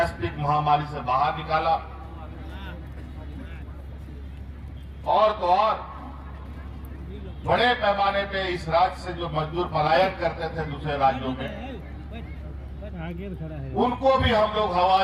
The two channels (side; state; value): both; identical; correlation 1.00